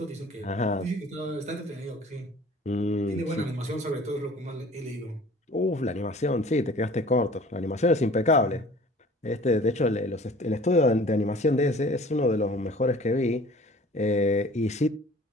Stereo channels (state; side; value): normal; both; correlation 0.48